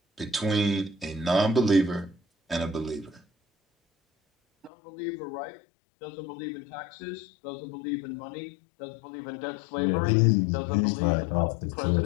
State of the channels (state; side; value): drops out; right; at 4.7 s